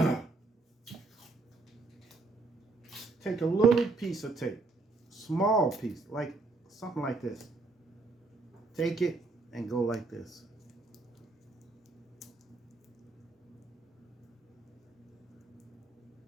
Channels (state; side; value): quieter; left; 3.5 dB